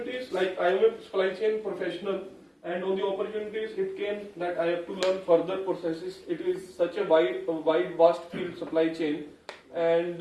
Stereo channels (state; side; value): identical; both; correlation 1.00